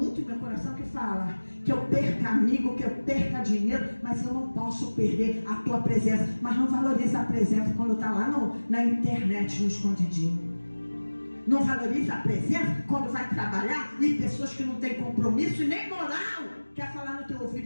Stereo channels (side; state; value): both; inverted; correlation -1.00